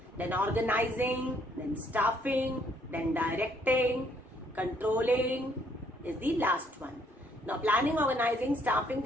then organizing, then staffing, then directing. Controlling is the last one. Now, planning, organizing, staffing,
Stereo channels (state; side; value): normal; both; correlation 0.67